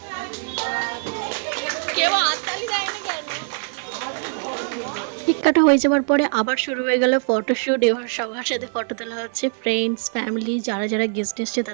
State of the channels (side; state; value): left; silent; 58 dB below the other